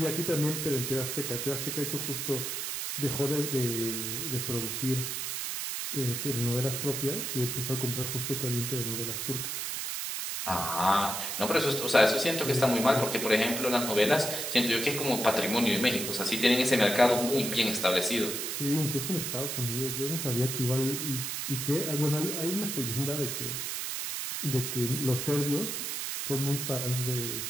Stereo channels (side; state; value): right; noise; hiss, 3 dB below the sound